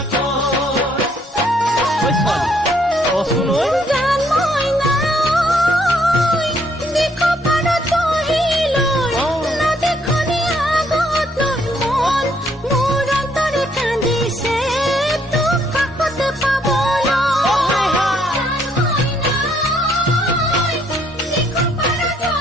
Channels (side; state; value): both; normal; correlation 0.69